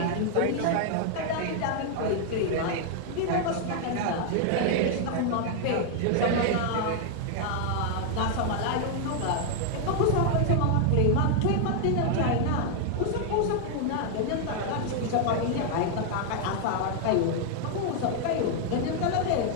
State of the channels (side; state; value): both; different; correlation 0.00